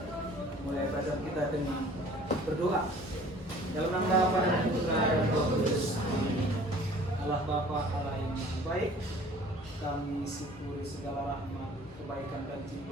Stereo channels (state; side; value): normal; both; correlation 0.50